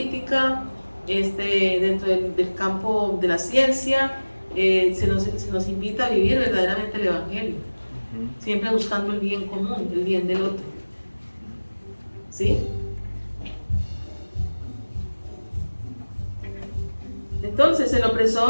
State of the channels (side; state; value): both; inverted; correlation -1.00